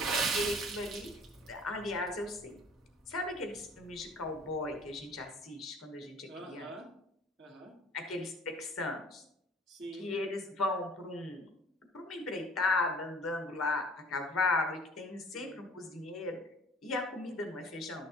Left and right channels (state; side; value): normal; both; correlation 0.49